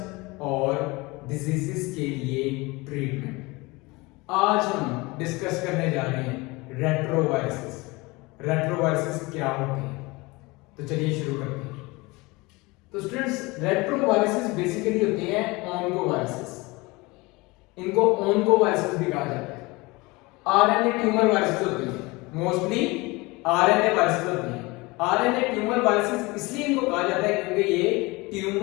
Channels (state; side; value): quieter; right; 23.7 dB